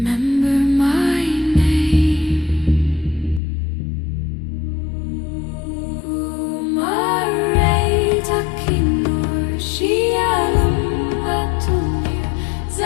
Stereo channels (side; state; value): right; drops out; at 3.4 s